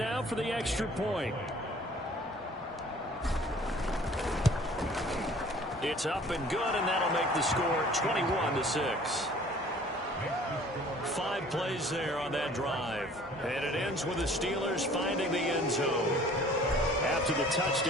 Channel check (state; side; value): normal; both; correlation 0.51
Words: for the extra point. It's up and good, and that'll make the score 21-6. 5 plays there on that drive. And it ends with the Steelers finding the end zone. After the